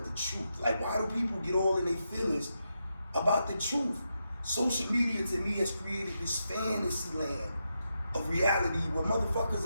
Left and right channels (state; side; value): inverted; both; correlation -0.85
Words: the truth? Like, why do people get all in their feelings about the truth? Social media to me has created this fantasy land of reality where